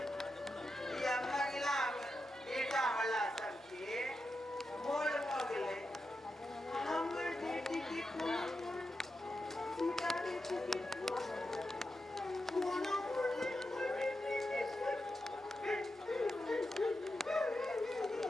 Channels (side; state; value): both; normal; correlation 0.88